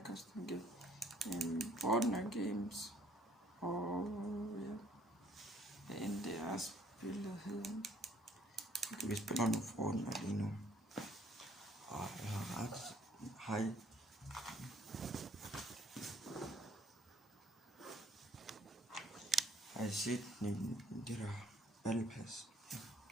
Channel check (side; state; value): both; normal; correlation 0.62